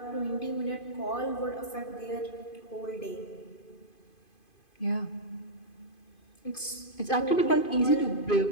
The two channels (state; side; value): late; right; 2.5 ms